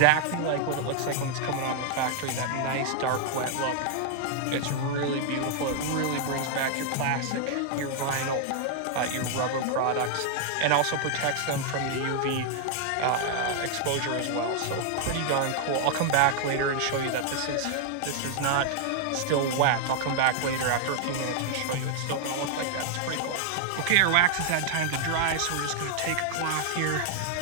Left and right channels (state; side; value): different; both; correlation 0.00